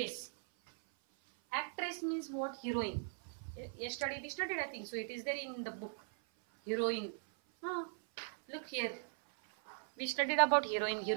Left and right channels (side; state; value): left; silent; 52 dB below the other